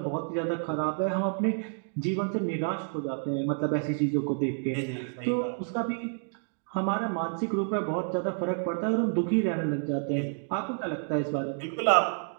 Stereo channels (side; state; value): left; silent; 58 dB below the other